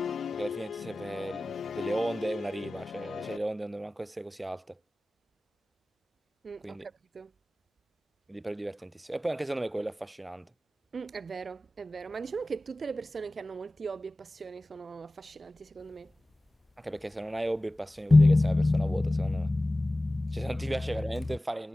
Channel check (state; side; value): normal; both; correlation 0.97